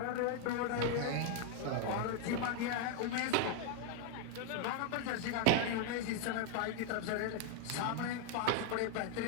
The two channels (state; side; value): different; both; correlation 0.00